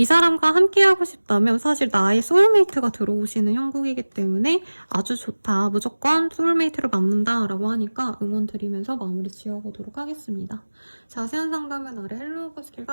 사람과 함께하고 싶다면 사실 나의 소울메이트가 들어오시는 형국이기 때문에 아주 좋다, 무조건 소울메이트를 만난다 라고 하니까 응원 드리면서 마무리 지어보도록 하겠습니다. 자세한 상담은 아래 헬로우버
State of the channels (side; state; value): both; inverted; correlation -1.00